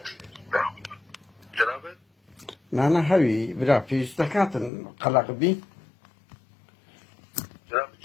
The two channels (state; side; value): drops out; right; at 4.7 s